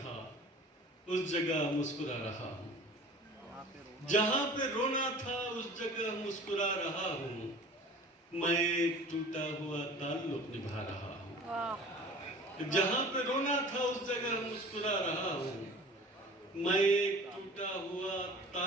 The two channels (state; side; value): normal; both; correlation 0.43